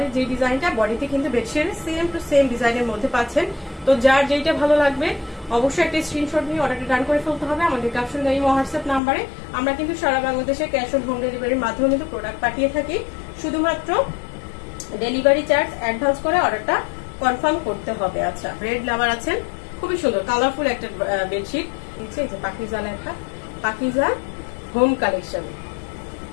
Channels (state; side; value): drops out; right; at 9.0 s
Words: যে ডিজাইনটা বডিতে কিন্তু বেডশিটের সেম টু সেম ডিজাইনের মধ্যে পাচ্ছেন। তো যার যেইটা ভালো লাগবে অবশ্যই একটা স্ক্রিনশট নিয়ে অর্ডারটা ডান করে ফেলতে হবে আমাদের ক্যাপশন এই হোয়াটসঅ্যাপ নাম্বারে। আমরা কিন্তু সারা বাংলাদেশে ক্যাশ অন হোম ডেলিভারির মাধ্যমে কিন্তু প্রোডাক্ট পাঠিয়ে থাকি। শুধুমাত্র ডেলিভারি চার্জ অ্যাডভান্স করে অর্ডারটা কনফার্ম করতে হবে। আচ্ছা, রেড লাভার আছেন, খুবই সুন্দর কালারফুল একটা বেডশিট নিচে, এই যে পাকিজা লেখা, পাকিজা হোম কালেকশন।